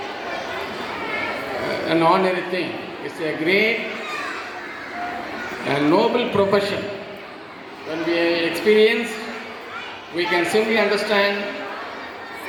an ordinary thing. It's a great and noble profession. When we experience, we can simply understand.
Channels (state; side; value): identical; both; correlation 1.00